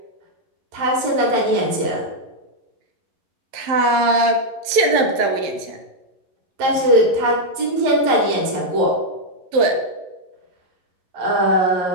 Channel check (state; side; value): late; left; 11 ms